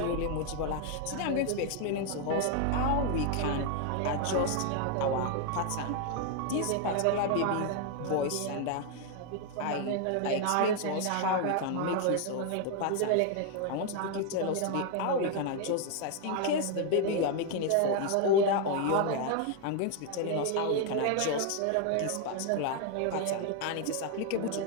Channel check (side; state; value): both; different; correlation 0.01